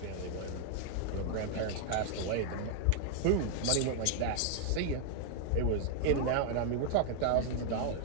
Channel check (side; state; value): both; different; correlation 0.00